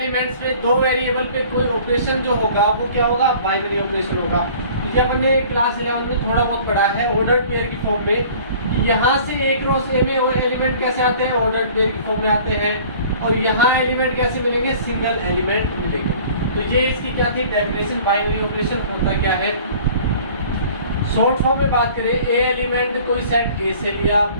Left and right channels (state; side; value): inverted; both; correlation -0.49